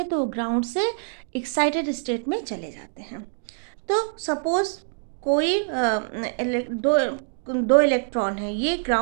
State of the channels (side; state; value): left; silent; digital silence